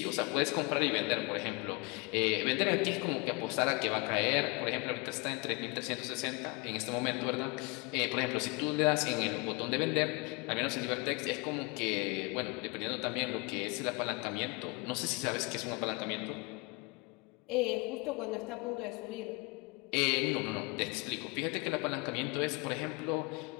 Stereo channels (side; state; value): right; quieter; 26.7 dB